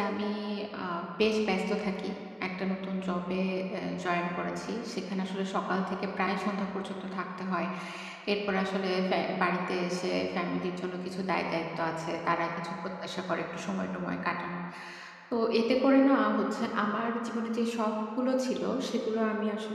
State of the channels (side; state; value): both; identical; correlation 1.00